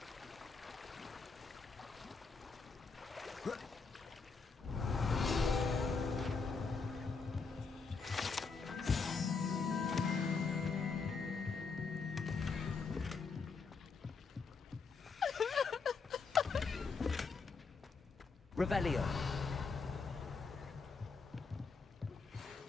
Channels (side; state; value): right; quieter; 4.8 dB